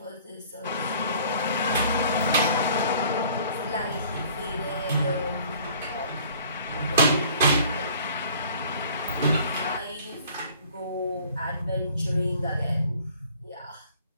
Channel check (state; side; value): inverted; both; correlation -0.52